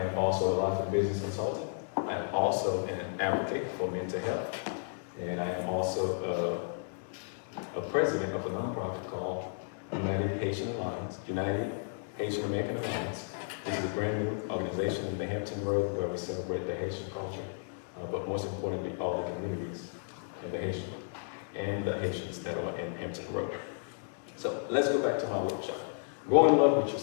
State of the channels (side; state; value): right; silent; digital silence